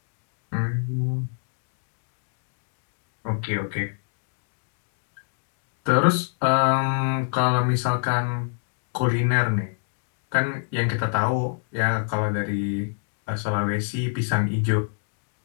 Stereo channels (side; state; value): right; silent; digital silence